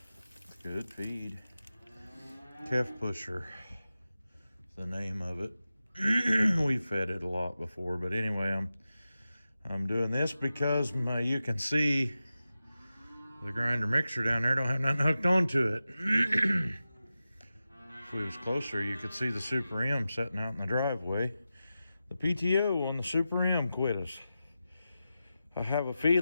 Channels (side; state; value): both; inverted; correlation -0.93